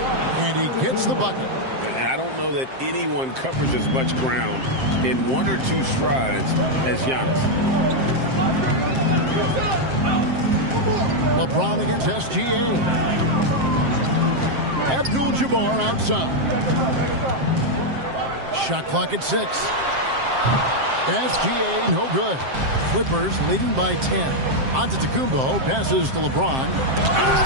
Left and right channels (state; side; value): late; left; 7.6 ms